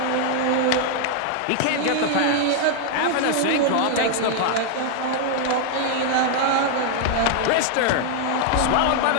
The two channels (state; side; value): different; both; correlation 0.00